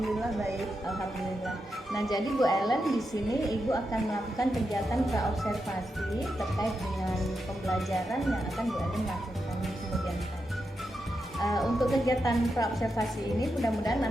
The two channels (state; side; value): normal; both; correlation 0.86